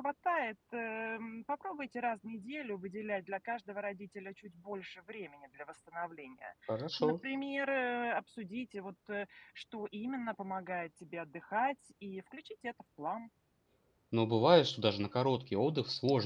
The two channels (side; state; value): both; identical; correlation 1.00